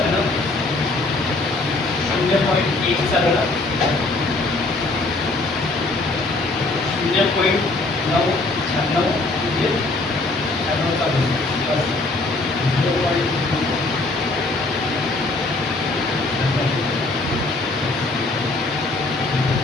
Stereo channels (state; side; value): quieter; right; 3.2 dB